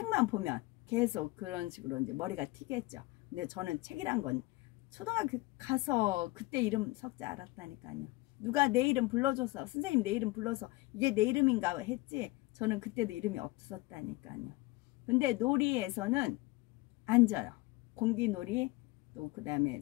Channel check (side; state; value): right; quieter; 21.2 dB